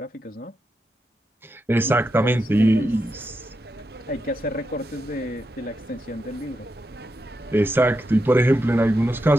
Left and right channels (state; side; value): normal; both; correlation 0.86